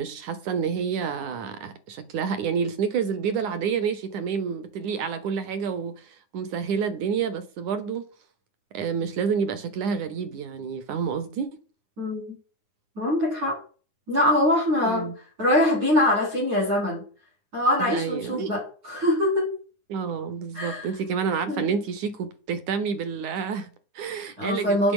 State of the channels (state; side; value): late; left; 9.7 ms